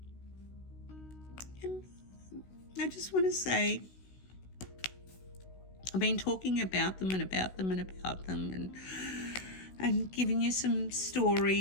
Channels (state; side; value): late; right; 16 ms